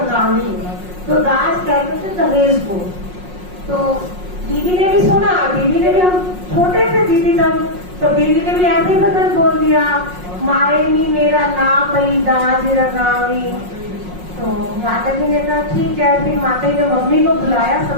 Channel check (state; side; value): late; left; 5.5 ms